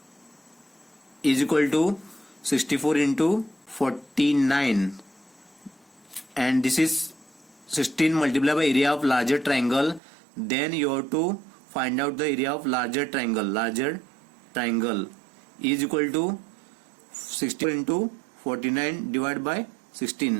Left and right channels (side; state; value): left; drops out; at 10.0 s